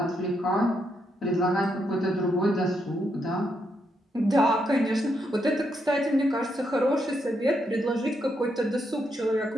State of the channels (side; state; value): both; normal; correlation 0.79